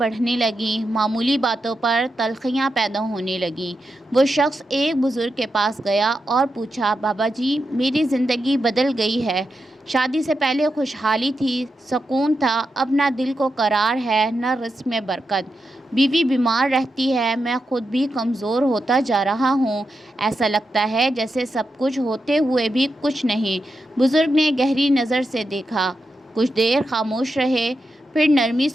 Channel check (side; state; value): both; normal; correlation 0.87